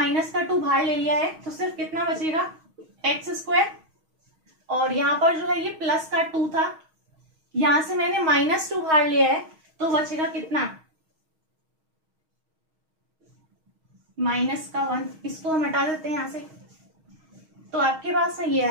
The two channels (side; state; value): left; late; 6.4 ms